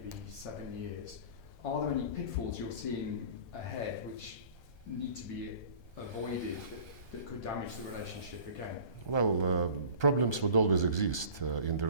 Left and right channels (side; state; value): right; late; 1.3 ms